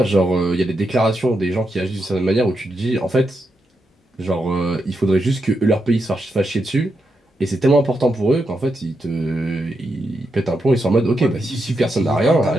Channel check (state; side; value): normal; both; correlation 0.84